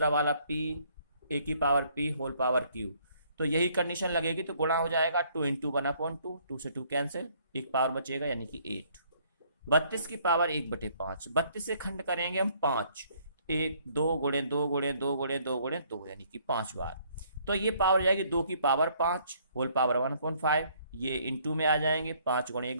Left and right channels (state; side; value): inverted; both; correlation -0.64